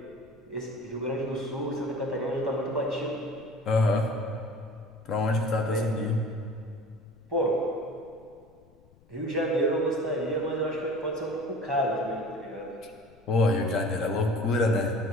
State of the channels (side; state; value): left; noise; rumble, 28 dB below the sound